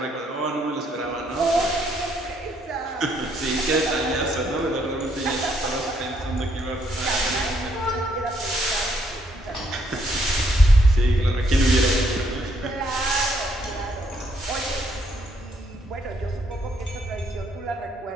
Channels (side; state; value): both; normal; correlation 0.71